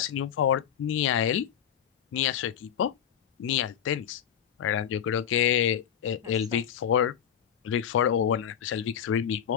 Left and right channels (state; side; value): quieter; right; 9.1 dB